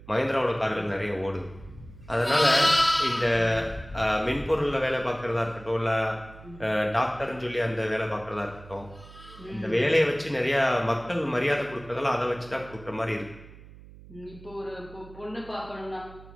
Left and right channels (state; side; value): noise; right; hum, 19 dB below the sound